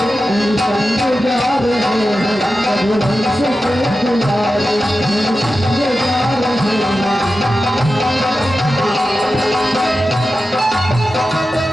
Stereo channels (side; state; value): both; normal; correlation 0.92